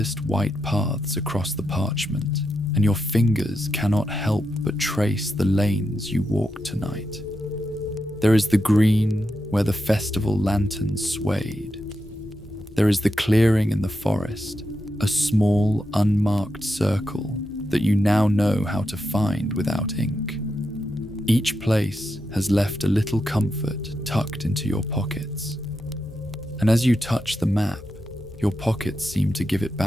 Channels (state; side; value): normal; both; correlation 0.86